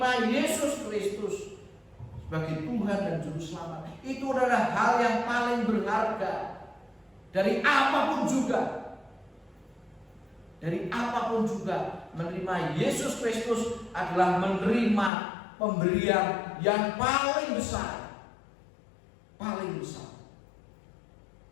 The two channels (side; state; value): right; drops out; at 15.1 s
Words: Yesus Kristus sebagai Tuhan dan Juru Selamat. Itu adalah hal yang paling berharga dari apapun juga. Dari apapun juga, menerima Yesus Kristus adalah menerima pemberian yang paling besar. Paling besar.